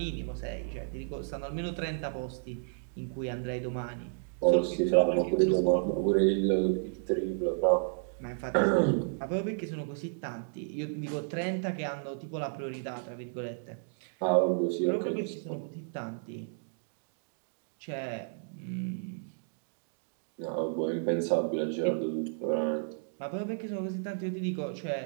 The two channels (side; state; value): left; silent; digital silence